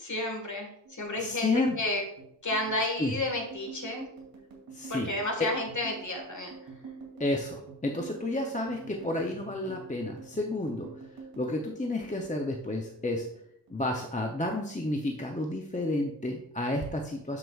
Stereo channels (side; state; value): both; normal; correlation 0.39